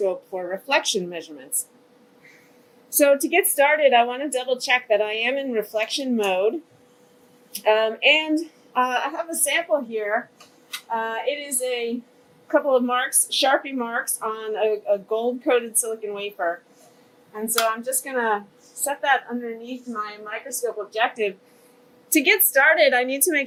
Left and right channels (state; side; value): identical; both; correlation 1.00